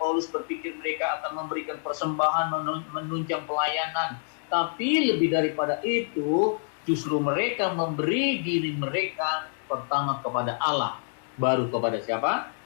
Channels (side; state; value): right; silent; digital silence